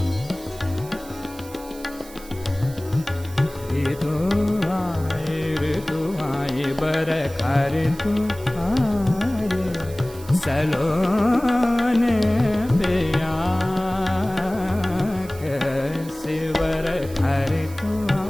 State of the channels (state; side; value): noise; right; hiss, 19 dB below the sound